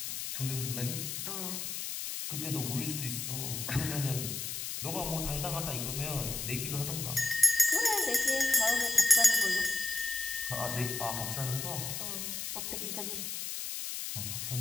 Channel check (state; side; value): noise; left; hiss, 4 dB below the sound